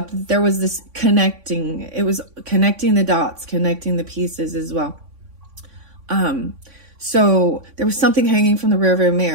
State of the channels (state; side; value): late; left; 3.5 ms